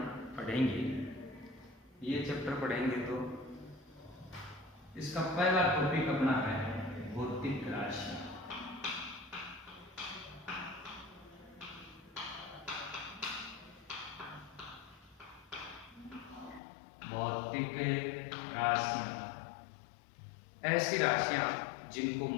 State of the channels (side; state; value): right; drops out; at 16.6 s